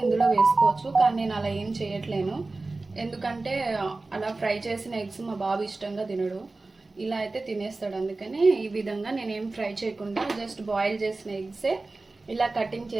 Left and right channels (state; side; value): quieter; left; 3.4 dB